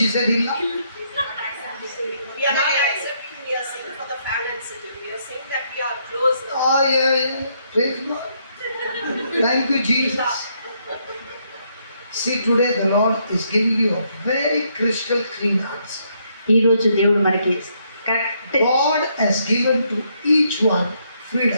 said, Illa? We are not accepting, we are saying for the family and city. We are saying that we are close. Oh, yeah. Praise God. Thank you, Jesus. See, today the Lord is giving you a very crystal clean answer. ఈరోజు దేవుడు మనకి correct God has given to each one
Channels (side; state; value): both; inverted; correlation -0.73